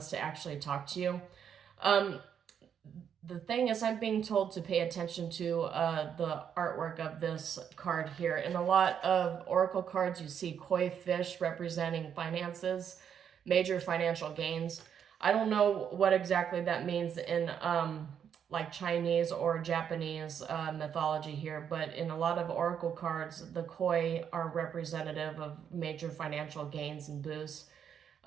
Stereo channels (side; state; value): left; quieter; 8.2 dB